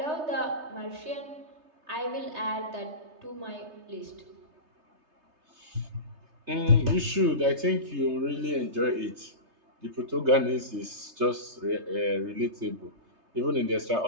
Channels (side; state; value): left; late; 3.3 ms